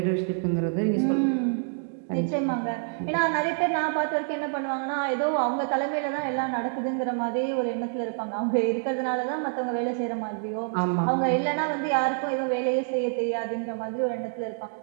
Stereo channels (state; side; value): silent; left; 60 dB below the other